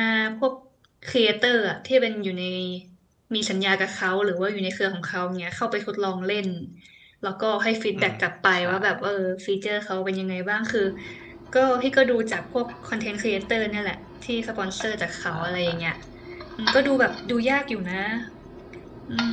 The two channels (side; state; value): both; identical; correlation 1.00